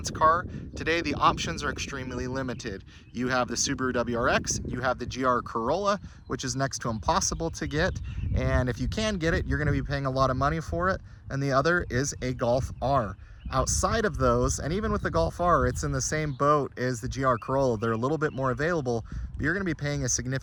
car, today the options are extremely limited. You have the Subaru WRX, you have the GR Corolla, which is next to impossible to get, and if you can get it, you're going to be paying a lot of money for it, and the other is a Golf R. Outside of those, and even with the Golf R, it's in the same boat as the GR Corolla. They're a little bit more available, but you're going to be paying a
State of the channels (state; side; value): identical; both; correlation 1.00